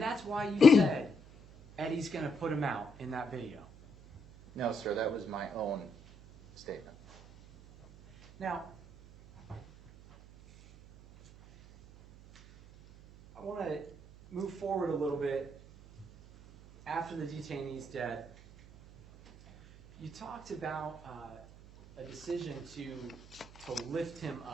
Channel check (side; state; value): right; noise; hum, 20 dB below the sound